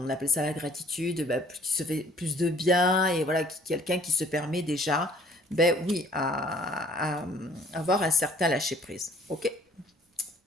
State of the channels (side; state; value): both; normal; correlation 0.56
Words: appelle ça la gratitude, ben, qui se fait plus de bien, et voilà, quelqu'un qui se permet déjà, ben oui, à avoir un certain lâcher prise. Ok.